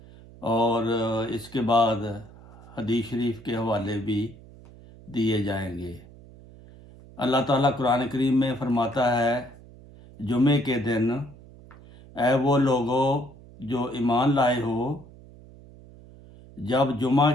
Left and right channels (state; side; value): noise; right; hum, 21 dB below the sound